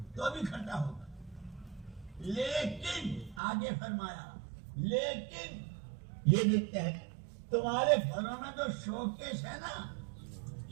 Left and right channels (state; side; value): drops out; left; at 3.4 s